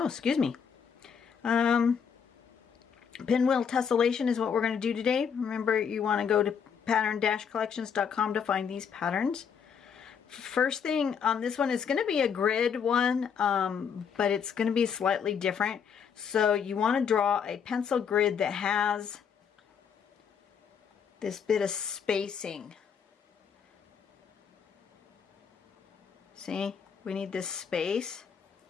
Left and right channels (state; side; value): quieter; right; 7.1 dB